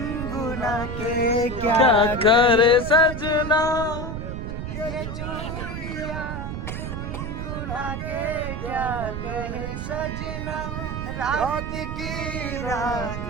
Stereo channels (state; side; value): noise; right; rumble, 5 dB below the sound